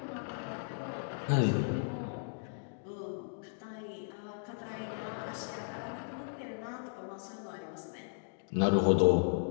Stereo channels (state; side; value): silent; right; digital silence